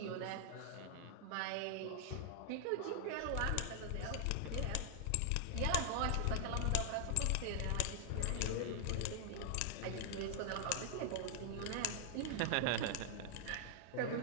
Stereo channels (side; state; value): both; different; correlation 0.00